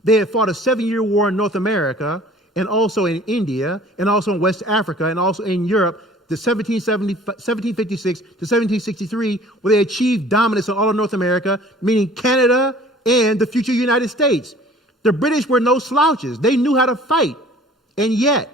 They had fought a 7-year war in North America, and also in India, and also in West Africa, and also in Europe, the 1756 to 1763, where they achieved dominance in all of North America, meaning Canada and the future United States. The British were no slouches. They knew how to fight. And yet,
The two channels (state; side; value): normal; both; correlation 0.49